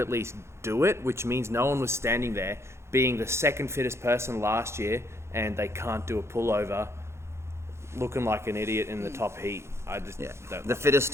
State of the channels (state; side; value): late; left; 0.13 ms